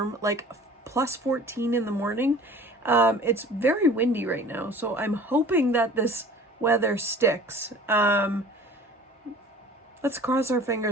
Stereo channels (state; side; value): normal; both; correlation 0.45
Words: like plus 14 in the morning. It's very windy right now, so I'm hoping that this weather sticks. Let's cross our